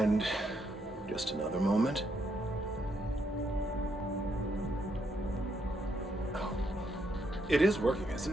just another moment. Oh, it is working,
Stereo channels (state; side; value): normal; both; correlation 0.76